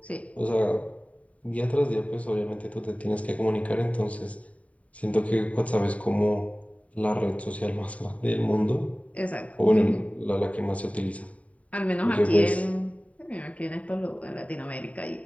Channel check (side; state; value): right; late; 0.067 ms